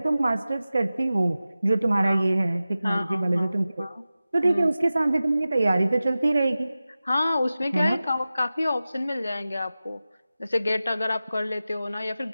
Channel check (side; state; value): both; inverted; correlation -0.95